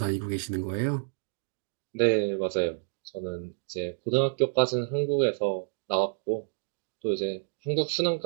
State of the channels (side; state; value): left; silent; digital silence